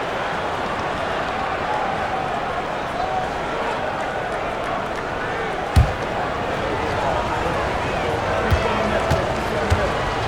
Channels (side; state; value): both; identical; correlation 1.00